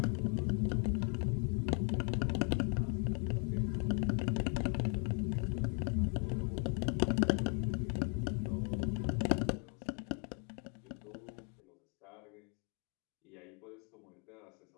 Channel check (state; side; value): quieter; right; 39.3 dB